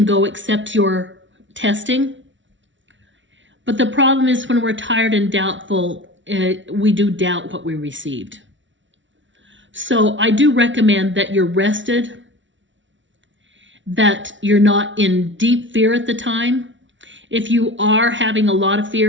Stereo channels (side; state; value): left; late; 0.55 ms